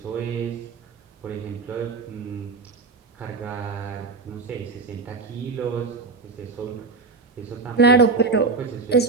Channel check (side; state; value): left; quieter; 4.3 dB